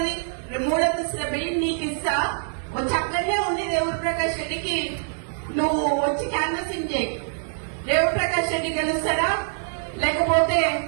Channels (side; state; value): left; silent; digital silence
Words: 3 అంతస్తుల బిల్డింగ్ నీకు ఇస్తా. వచ్చి అక్కడనే ఉండి రేవూరు ప్రకాష్ రెడ్డికి నువ్వు వచ్చి క్యాన్వసింగ్ చేయి. రేవూరు ప్రకాష్ రెడ్డి గెలుస్తారా? లేకపోతే